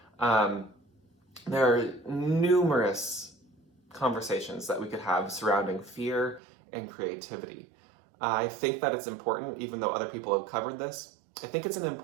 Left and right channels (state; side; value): drops out; left; at 6.4 s